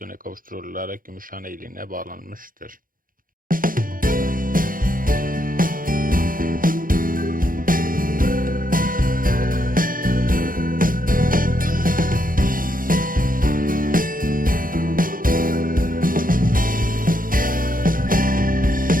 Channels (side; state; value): left; late; 0.40 ms